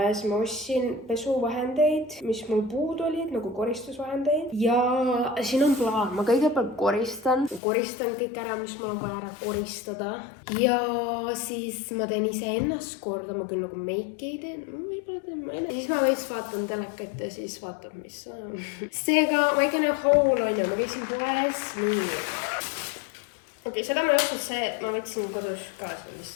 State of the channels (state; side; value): drops out; right; at 7.6 s